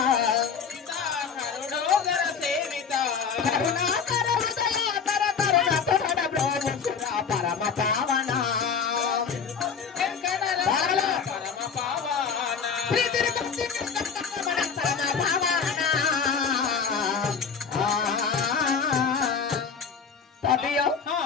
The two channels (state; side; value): quieter; right; 6.2 dB